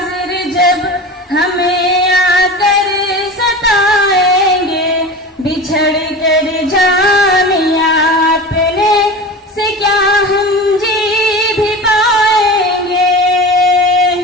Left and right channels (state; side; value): normal; both; correlation 0.32